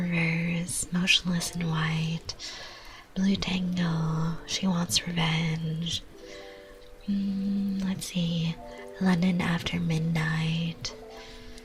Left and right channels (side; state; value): both; identical; correlation 1.00